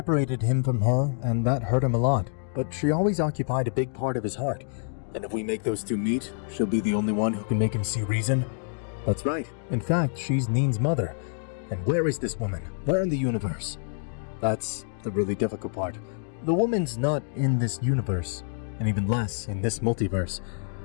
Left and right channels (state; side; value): silent; right; digital silence